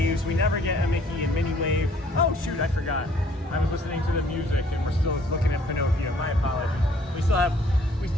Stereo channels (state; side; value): normal; both; correlation 0.60